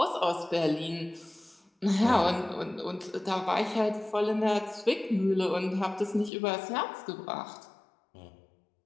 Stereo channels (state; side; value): drops out; right; at 6.3 s